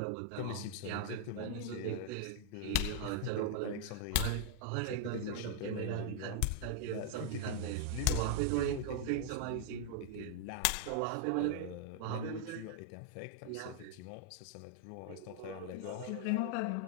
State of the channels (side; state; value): both; different; correlation 0.00